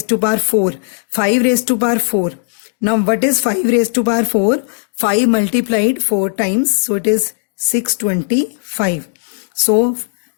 to power 4. 5 raised to power 4. Now what is 5 raised to power 4? 5 multiplied 4 times. So it is 625. So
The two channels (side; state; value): right; silent; digital silence